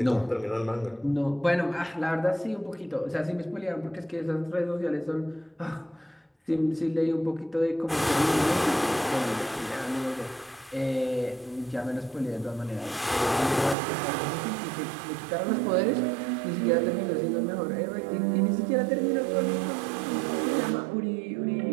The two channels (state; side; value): drops out; left; at 13.8 s